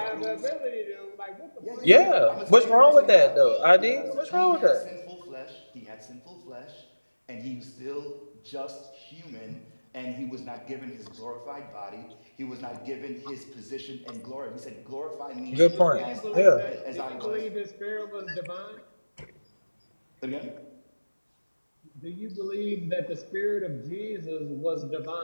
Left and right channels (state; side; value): inverted; both; correlation -1.00